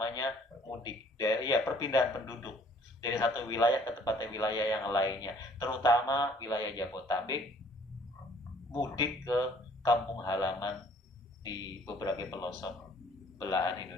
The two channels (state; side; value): normal; both; correlation 0.58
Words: mudik, dari ya perpindahan penduduk dari satu wilayah ke tempat wilayah yang lainnya, terutama wilayah Jabodetabek, mudik ke kampung halaman di beberapa pelosok belahan